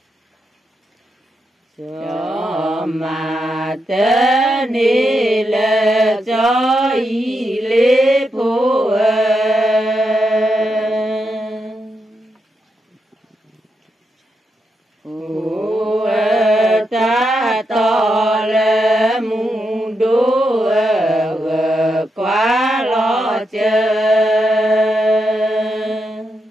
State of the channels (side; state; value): both; normal; correlation 0.84